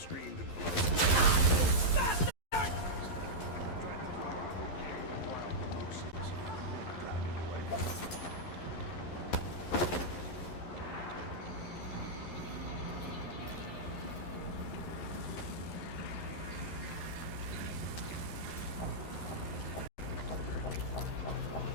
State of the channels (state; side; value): late; right; 11 ms